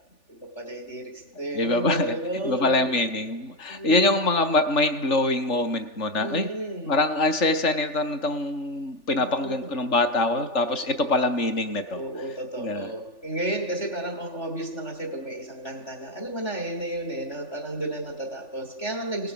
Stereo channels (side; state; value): right; late; 3.4 ms